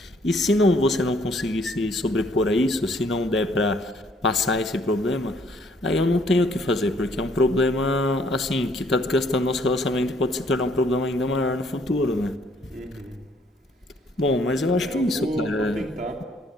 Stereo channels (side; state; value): both; normal; correlation 0.64